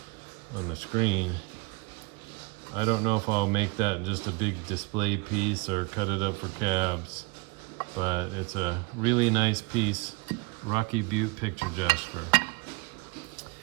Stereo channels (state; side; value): quieter; left; 27.7 dB